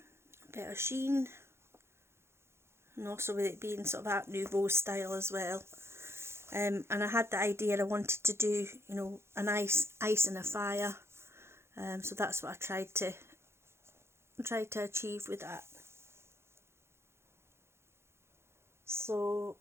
bit of sheen, and also with it being sort of Art Nouveau style as well. And I had the idea I wanted to do, you know, an ice and a fire. So that's what I tried to achieve with that. So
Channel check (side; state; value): left; late; 0.12 ms